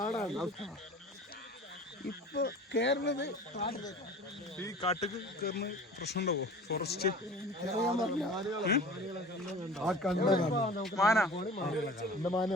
ഇപ്പൊ കേറുന്നത്. ഈ കാട്ടിക്ക് കയറുന്ന പ്രശ്നം ഉണ്ടാവോ? ഫോറസ്റ്റ് മാന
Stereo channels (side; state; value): both; normal; correlation 0.41